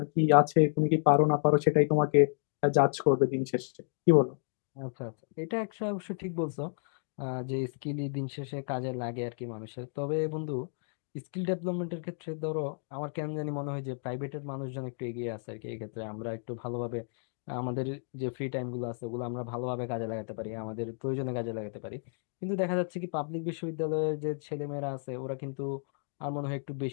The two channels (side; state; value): right; silent; digital silence